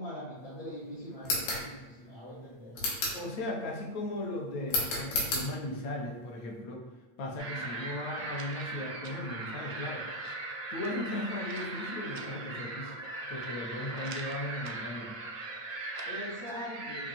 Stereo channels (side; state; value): right; late; 8.7 ms